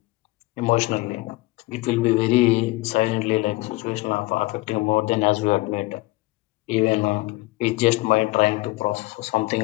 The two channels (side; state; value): right; quieter; 20.5 dB